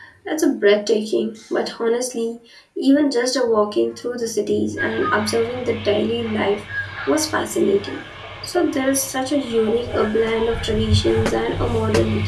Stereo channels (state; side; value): identical; both; correlation 1.00